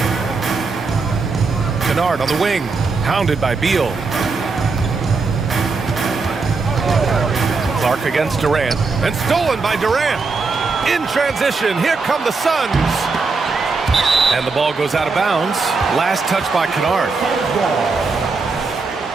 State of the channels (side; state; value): left; quieter; 4.3 dB